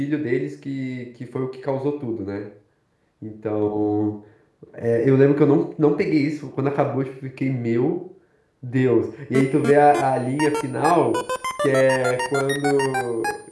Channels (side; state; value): both; identical; correlation 1.00